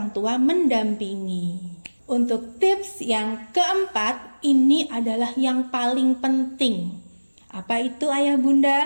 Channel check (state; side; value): inverted; both; correlation -1.00